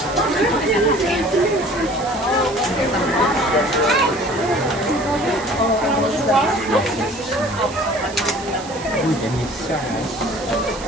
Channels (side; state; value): right; noise; hiss, 15 dB below the sound